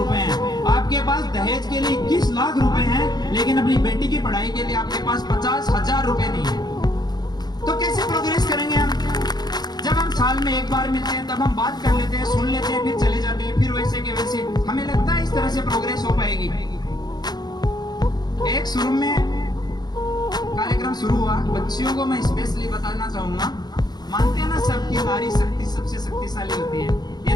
हैं, आपके पास दहेज के लिए 21 लाख रुपए हैं, लेकिन अपनी बेटी की पढ़ाई के लिए आपके पास 50,000 रुपए नहीं है। तो कैसे प्रोग्रेस करेंगे हम? जब हम साल में एक बार मिलते हैं तब हम बात कर लेते हैं, सुन लेते हैं, फिर चले जाते हैं, फिर वैसे के वैसे। हमें लगता है इस तरह से प्रोग्रेस हो पाएगी। एक शुरू में कार्यक्रम शुरू हुआ, बच्चियों को मैं स्पेशली बताना चाहूंगा, मानते हैं ना सबकी नारी शक्ति सबसे शक्तिशाली होती है,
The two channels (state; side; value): late; right; 0.20 ms